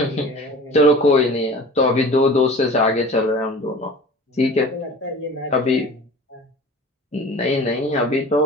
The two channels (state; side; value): normal; both; correlation 0.40